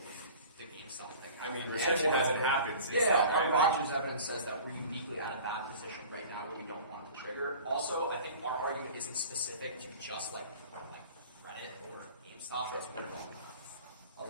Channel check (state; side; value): inverted; both; correlation -0.42